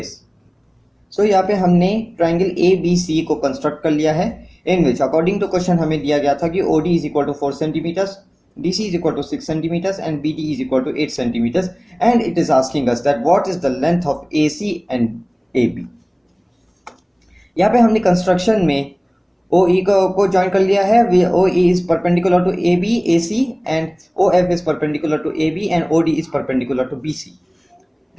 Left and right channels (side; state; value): both; identical; correlation 1.00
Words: So यहाँ पे हमने triangle A B C को construct कर लिया है, in which according to question हमें दिया गया था कि O D is equal to 4 centimetres, D C is equal to 6 centimetres and B D is equal to 8 centimetres, and it is asking us that what is the length of A C and A B. यहाँ पे हमने construction में ओ ई को join कर लिया है। O E is perpendicular to A B A C and O F is perpendicular to A B and O D is perpendicular to B C.